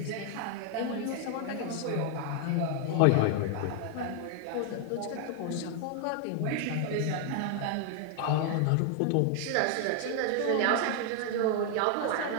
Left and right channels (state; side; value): different; both; correlation 0.00